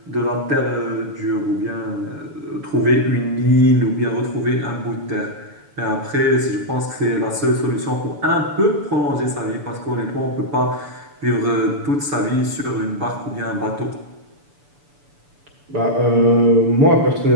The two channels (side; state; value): left; late; 6.9 ms